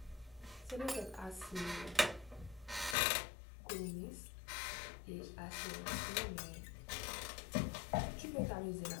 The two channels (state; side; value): drops out; right; at 3.0 s